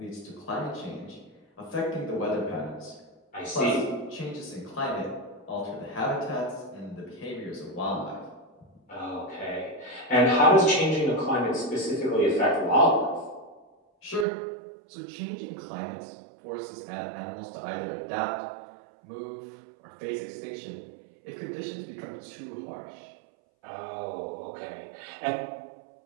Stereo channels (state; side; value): drops out; left; at 14.2 s